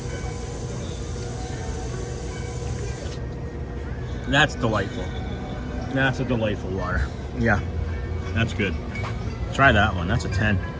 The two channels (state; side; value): identical; both; correlation 1.00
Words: That's delightful. That's a delightful water. Yeah, that's good. Try that one. That's a 10.